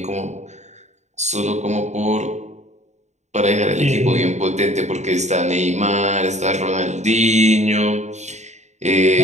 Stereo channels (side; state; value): left; late; 0.33 ms